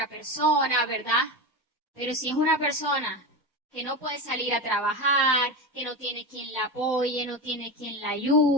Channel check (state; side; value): normal; both; correlation 0.21